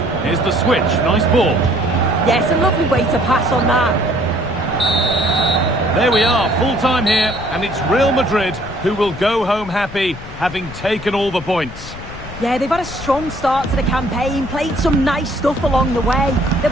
Here's the switch. Nice ball. Yes, a lovely way to pass on that. There we are, full time here, and it's Real Madrid who will go home happy, having taken all the points. Yeah, they've had a strong start to the campaign, played some nice stuff along the way. They'll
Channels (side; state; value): left; noise; rumble, 14 dB below the sound